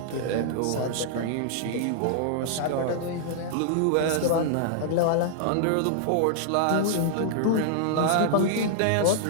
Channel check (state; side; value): different; both; correlation -0.01